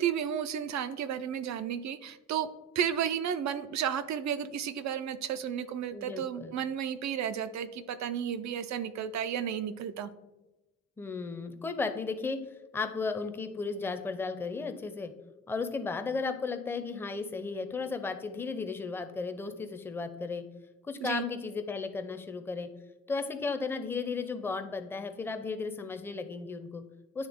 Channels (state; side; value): normal; both; correlation 0.35